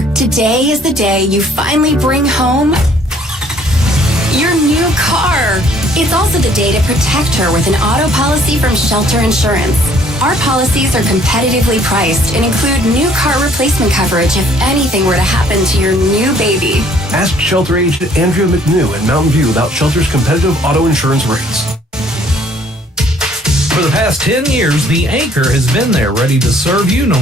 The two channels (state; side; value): normal; both; correlation 0.60